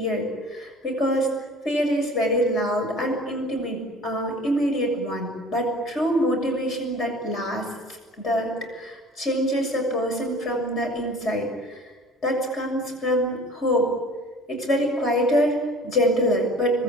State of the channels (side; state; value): both; normal; correlation 0.45